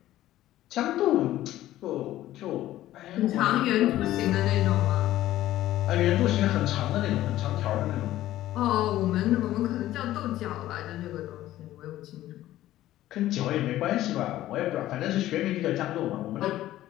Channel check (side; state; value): right; quieter; 14.4 dB